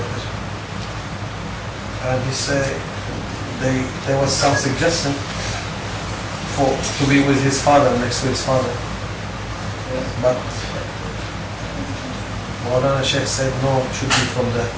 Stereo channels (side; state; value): both; identical; correlation 1.00